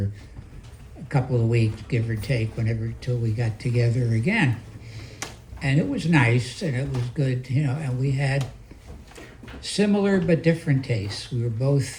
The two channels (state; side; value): identical; both; correlation 1.00